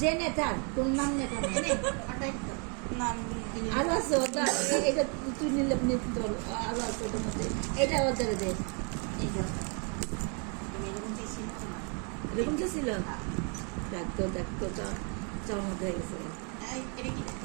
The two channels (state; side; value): quieter; left; 37.9 dB